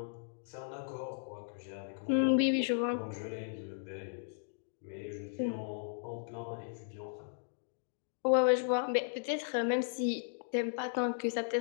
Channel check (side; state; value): right; silent; digital silence